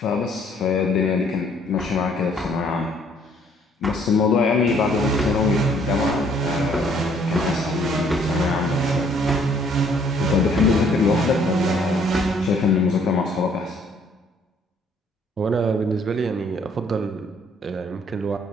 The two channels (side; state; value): both; normal; correlation 0.62